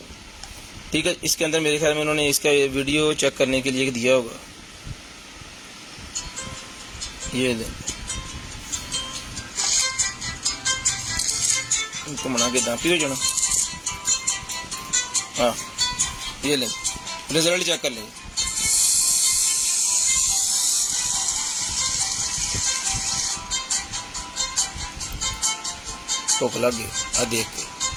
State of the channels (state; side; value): identical; both; correlation 1.00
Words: ठीक है। इसके अंदर मेरे ख्याल में उन्होंने इसका ये वीडियो चेक करने के लिए दिया होगा। ये ले, इनको मना के दापी हो जाना। हाँ, ये ले, रिजल्ट चेक कर लेंगे। भुख लग गई आ देख के।